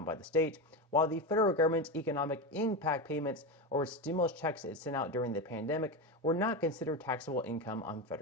by the state, while the federal government's economic impact payments or stimulus checks it sent out during the pandemic were not considered taxable income on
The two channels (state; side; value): normal; both; correlation 0.17